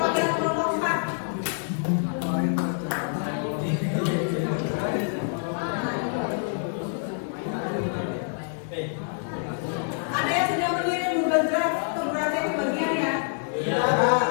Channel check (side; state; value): right; silent; digital silence